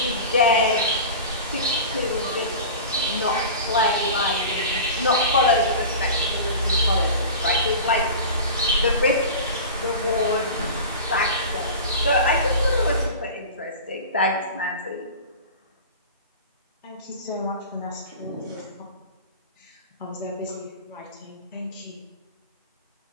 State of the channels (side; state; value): both; inverted; correlation -0.33